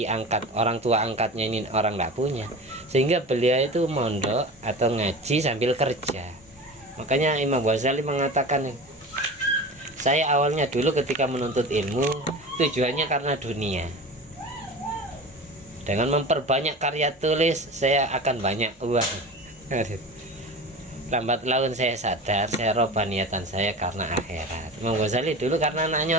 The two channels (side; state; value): both; normal; correlation 0.32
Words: angkat, orang tua angkatnya ini orang tidak punya, sehingga beliau itu mondok atau ngaji sambil kerja. Makanya Imam Ghazali mengatakan, saya awalnya dulu ketika menuntut ilmu tujuannya karena dunia. Dengan memperbanyak karya tulis saya akan banyak uang. Lambat laun saya sadar, saya robah niatan saya karena akhirat. Imam Ghazali dulu karena